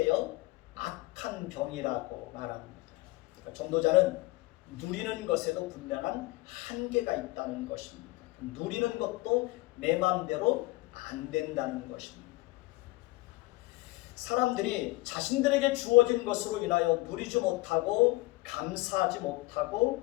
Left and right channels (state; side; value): quieter; right; 21.0 dB